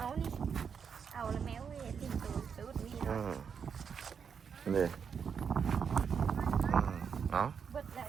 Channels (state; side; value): quieter; left; 6.7 dB